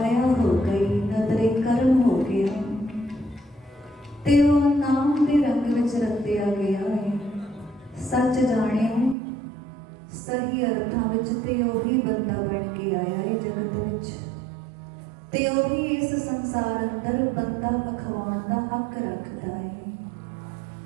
ਹੋ ਗਈ, ਨਦਰੇ ਕਰਮ ਹੋ ਗਿਆ ਤੇ ਉਹ ਨਾਮ ਦੇ ਰੰਗ ਵਿੱਚ ਰੰਗਿਆ ਗਿਆ ਹੈ। ਸੱਚ ਜਾਣਿਓ, ਸਹੀ ਅਰਥਾਂ ਵਿੱਚ ਤੇ ਉਹੀ ਬੰਦਾ ਬਣ ਕੇ ਆਇਆ ਹੈ ਜਗਤ ਵਿੱਚ, ਤੇ ਉਹੀ ਇਸ ਸੰਸਾਰ ਅੰਦਰ ਬੰਦਾ ਅਖਵਾਉਣ ਦਾ ਹੱਕ ਰੱਖਦਾ ਹੈ।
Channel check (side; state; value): left; drops out; at 9.2 s